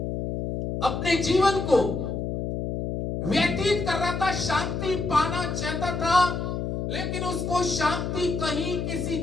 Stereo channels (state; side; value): noise; left; hum, 3 dB below the sound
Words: अपने जीवन को व्यतीत कर रहा था, शांति पाना चाहता था, लेकिन उसको शांति कहीं किसी